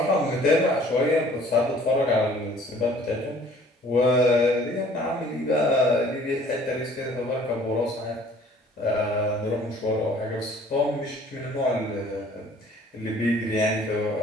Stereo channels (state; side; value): normal; both; correlation 0.54